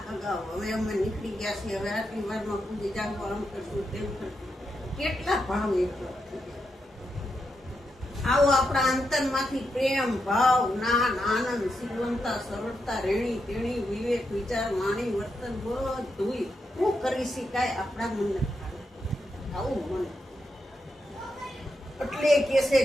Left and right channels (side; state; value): both; normal; correlation 0.84